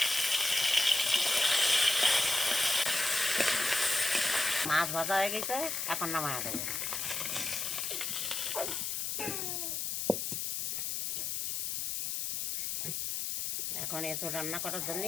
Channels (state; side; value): noise; left; hiss, 1 dB below the sound